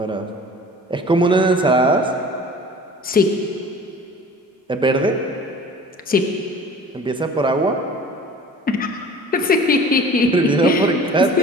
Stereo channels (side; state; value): both; normal; correlation 0.44